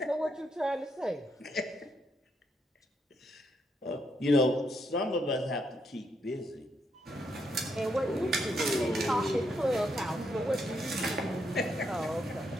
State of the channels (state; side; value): normal; both; correlation 0.78